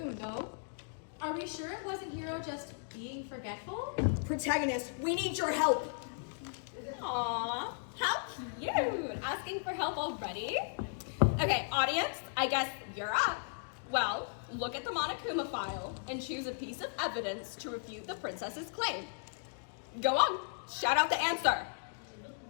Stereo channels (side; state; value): right; silent; digital silence